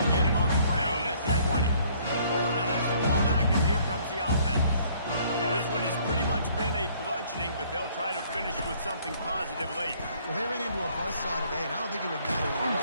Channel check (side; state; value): both; inverted; correlation -0.61